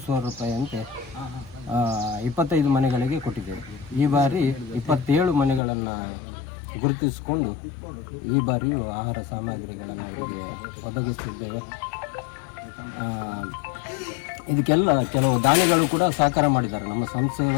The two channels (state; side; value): drops out; right; at 5.6 s